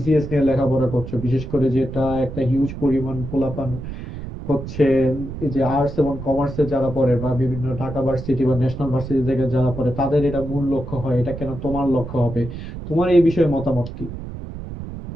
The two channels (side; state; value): right; noise; rumble, 9 dB below the sound